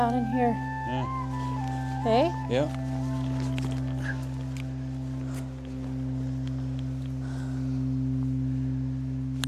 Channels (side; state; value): both; identical; correlation 1.00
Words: in here. Yeah. Hey? Yeah.